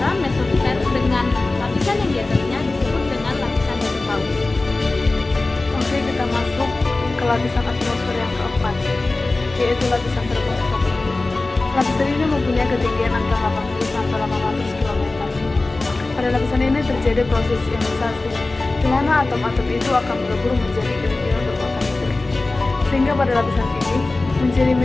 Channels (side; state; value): right; quieter; 3.2 dB